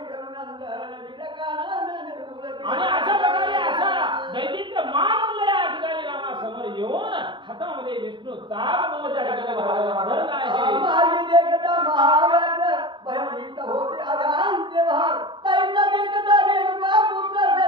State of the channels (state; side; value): late; left; 0.23 ms